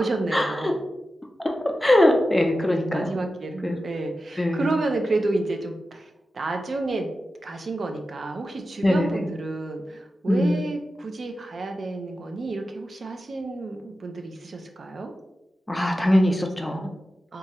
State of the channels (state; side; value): normal; both; correlation 0.92